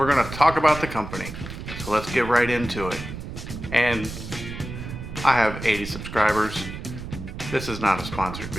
gonna talk about the company. So let's get right into it. And I have 80 subscribers. This is not a sponsored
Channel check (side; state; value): right; noise; rumble, 9 dB below the sound